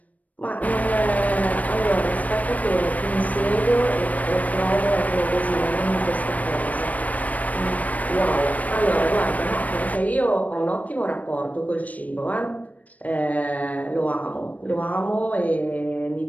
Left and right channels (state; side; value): late; right; 0.071 ms